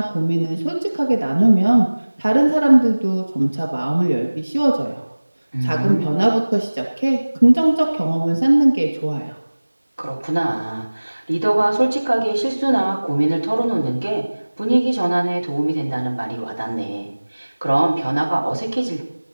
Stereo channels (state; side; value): inverted; both; correlation -1.00